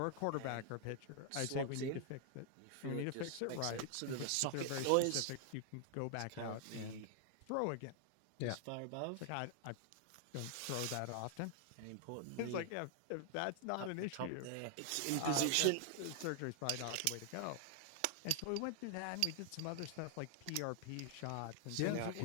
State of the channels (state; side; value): different; both; correlation 0.00